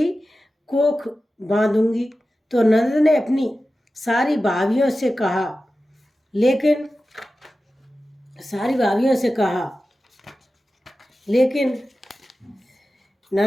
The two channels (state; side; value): normal; both; correlation 0.94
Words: कोख बांधूंगी। तो ननद ने अपनी सारी भाभियों से कहा लेकिन